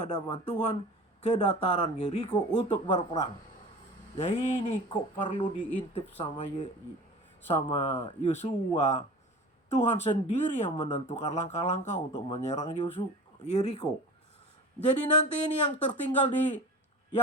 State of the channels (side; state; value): both; normal; correlation 0.37